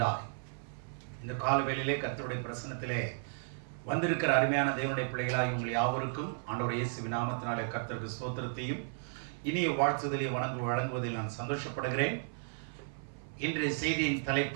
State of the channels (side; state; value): left; silent; 55 dB below the other